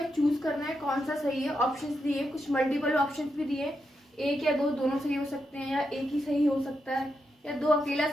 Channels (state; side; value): normal; both; correlation 0.84